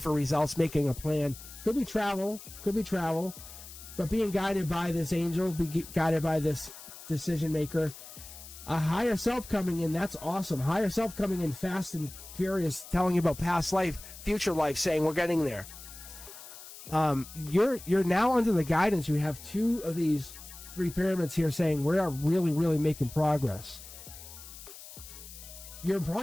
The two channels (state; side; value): noise; left; hiss, 15 dB below the sound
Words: results, making a plan. Could be travel, but being guided by this angel, be guided by this decision maker. A higher self coming in, that's awesome. Higher self coming in fast and furious, telling you about past life, future life, saying we're getting there. You're now under the guidance. You have 2 of these 3 pyramids here saying we are really, really making progress. You're